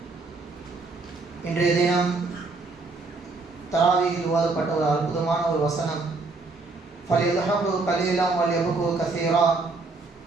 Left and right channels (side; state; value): left; quieter; 3.8 dB